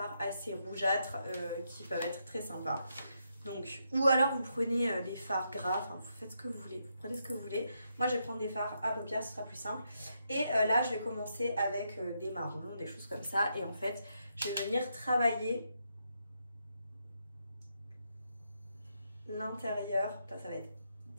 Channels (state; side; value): inverted; both; correlation -0.80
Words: assez rougeâtres qui peuvent être très sympas. Donc, ou alors vous prenez des fards gras, enfin vous faites ce que vous voulez, vous prenez ce que vous voulez. Moi je vais prendre des fards à paupières, ce sera plus simple. Et là je vais commencer avec des marrons, des choses comme ça. Et en fait je vais venir travailler l'intérieur. Ça va être